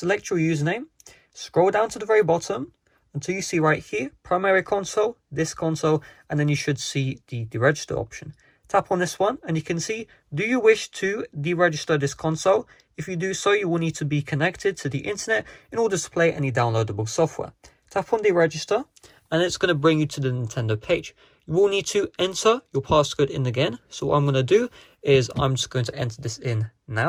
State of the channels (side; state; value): both; identical; correlation 1.00